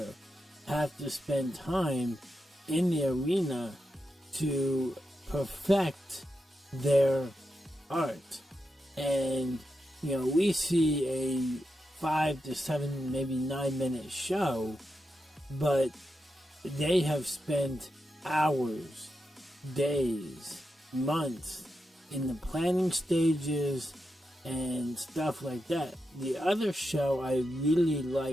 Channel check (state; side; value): normal; both; correlation 0.87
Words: have to spend time in the arena to perfect their art. And we see a 5 to 7, maybe 9-minute show, but they have spent hours, days, months in the planning stages and stuff like that. The other show I really